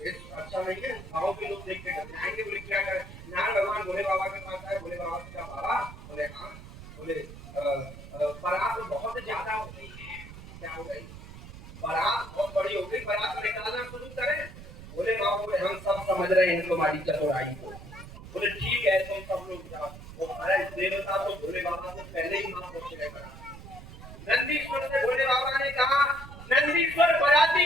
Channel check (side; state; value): right; noise; rumble, 14 dB below the sound